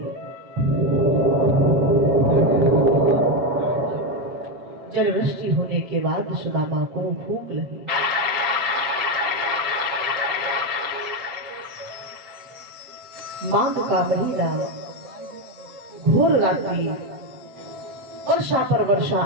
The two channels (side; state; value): left; late; 7.5 ms